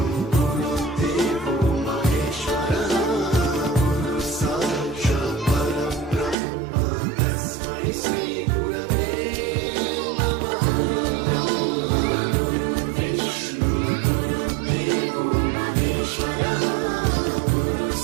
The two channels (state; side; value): drops out; left; at 6.4 s